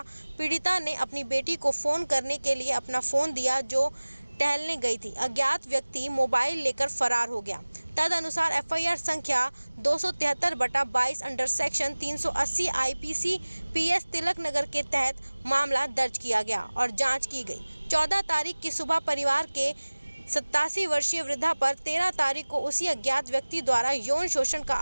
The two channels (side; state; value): both; inverted; correlation -1.00